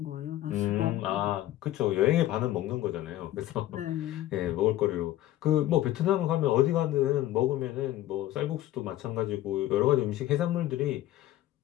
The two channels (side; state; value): right; quieter; 14.3 dB